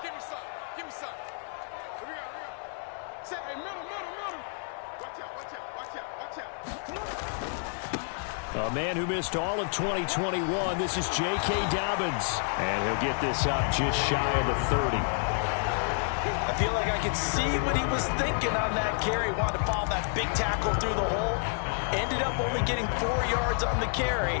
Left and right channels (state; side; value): silent; right; 58 dB below the other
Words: A man who missed all of 2021, this is J.K. Dobbins. And he'll get this up just shy of the 30. I feel like I could see what he was thinking on that carry. Wanted to follow that big tackle through the hole. Ended up only getting 4 yards on the